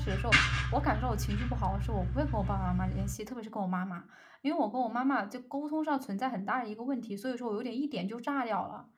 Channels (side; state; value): both; identical; correlation 1.00